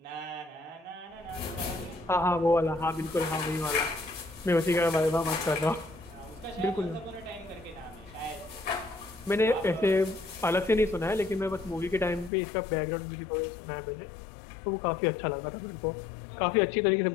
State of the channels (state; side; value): drops out; right; at 12.3 s